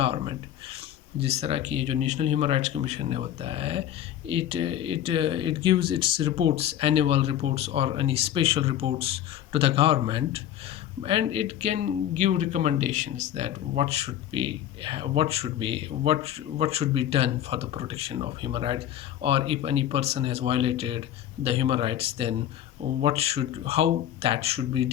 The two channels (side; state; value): right; quieter; 11.3 dB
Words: जिस तरह की जो नेशनल ह्यूमन राइट्स कमीशन ने होता है, it gives its reports, annual reports or any special reports to the government, and it can give recommendations that what should be done for the protection of human rights, or if any person has violated the human rights, then how that should be